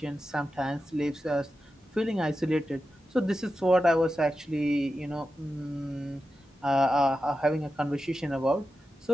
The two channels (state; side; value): normal; both; correlation 0.91